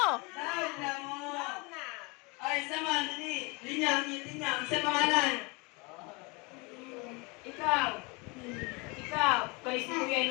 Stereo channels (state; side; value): quieter; right; 28.4 dB